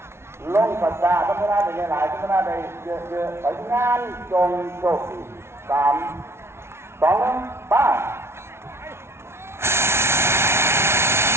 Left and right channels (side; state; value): left; late; 0.12 ms